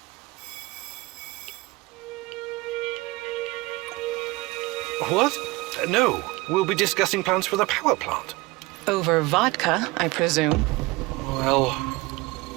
What? No, we'll be discussing plans for the power plant. Over vodka, I presume. Well...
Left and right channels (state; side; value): quieter; left; 22.2 dB